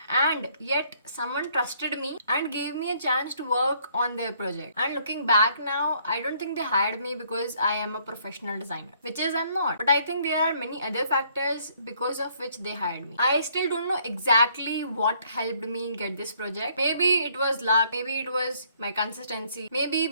and yet someone trusted me and gave me a chance to work on their project. And looking back now, I don't think they hired me because I am a professional designer, which is I'm not. But I think there are many other factors because of which they hired me. I still don't know exactly what helped me get this project. Maybe it was luck, maybe it was my consistency, maybe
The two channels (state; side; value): inverted; both; correlation -0.65